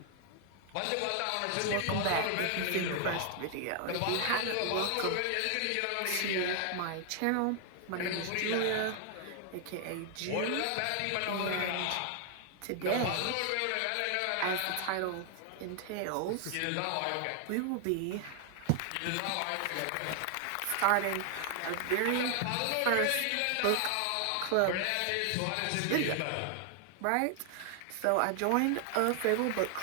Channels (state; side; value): different; both; correlation 0.00